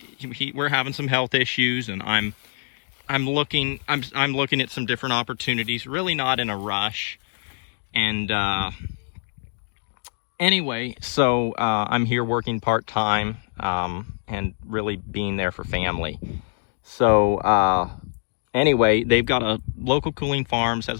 having some health issues, and I'm looking at some different opportunities. Really not in a rush, and anyway, so I'm here working part-time and really being there for family. So anyway, they've got a Local Cooling Farms has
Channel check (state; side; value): silent; right; 62 dB below the other